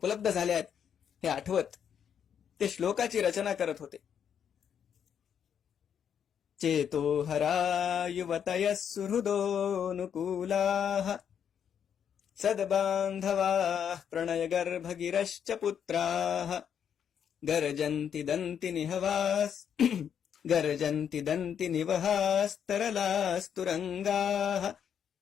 झाल्या आहेत हे आठवत ते श्लोकाची रचना करत होते. चेतो हरा युवतयः सुहृदोऽनुकूलाः सद्बान्धवाः प्रणयगर्भगिरश्च पुत्राः गर्जन्ति दन्ति निवहास्तरलास्तुरंगाः.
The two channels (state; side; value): quieter; right; 8.3 dB